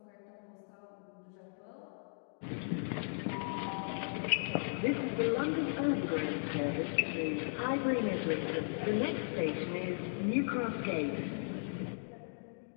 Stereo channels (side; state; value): right; silent; digital silence